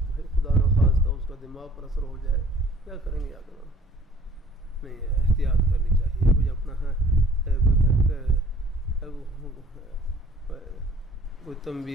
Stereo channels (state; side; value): normal; both; correlation 0.55